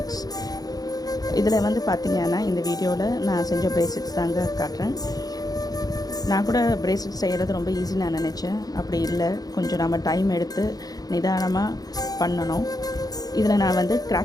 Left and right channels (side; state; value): right; late; 0.18 ms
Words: இதில் வந்து பார்த்திங்கன்னா இந்த வீடியோவில் நான் செஞ்ச பிரேஸ்லெட்ஸ் தாங்க காட்டுறேன். நான் கூட பிரேஸ்லெட் செய்கிறது ரொம்ப ஈஸி நான் நினச்சேன். அப்படி இல்லை, கொஞ்சம் நம்ம டைம் எடுத்து நிதானமாக பண்ணணும். இதில் நான் வந்து